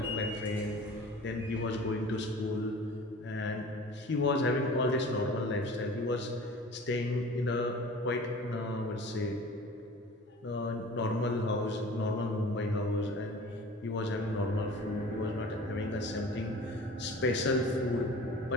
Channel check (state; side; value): normal; both; correlation 0.42